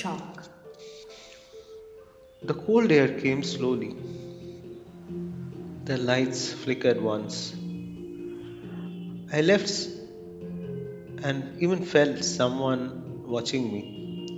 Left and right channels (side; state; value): both; identical; correlation 1.00